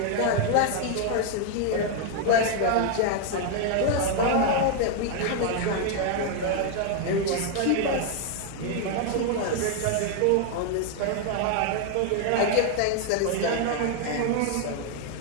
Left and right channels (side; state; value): both; different; correlation 0.00